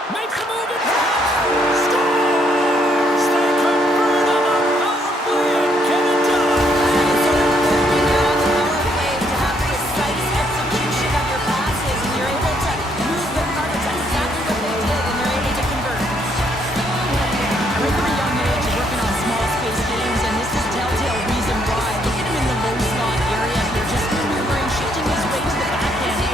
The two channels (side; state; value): both; normal; correlation 0.71